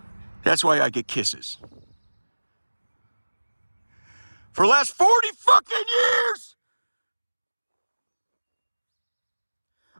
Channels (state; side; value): inverted; both; correlation -1.00